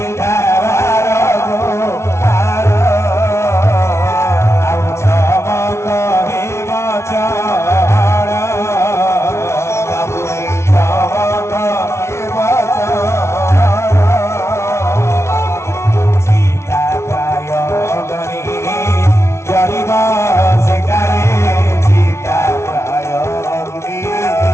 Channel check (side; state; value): right; late; 0.13 ms